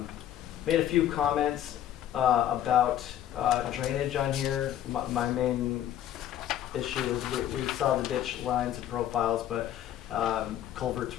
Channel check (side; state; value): right; quieter; 11.4 dB